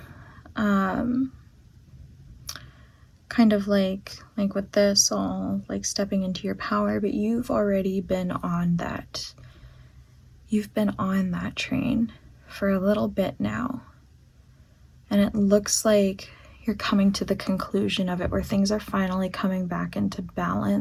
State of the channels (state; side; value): identical; both; correlation 1.00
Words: kind of like with this, all like stepping into your power, but you've already been on that. You've been on that train for a little bit now, and it looks like you're coming to the conclusion of it, where things are finally coming back into